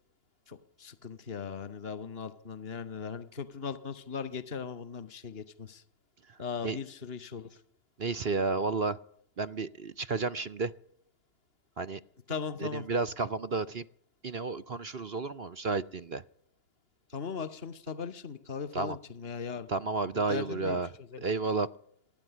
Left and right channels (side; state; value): left; late; 2.9 ms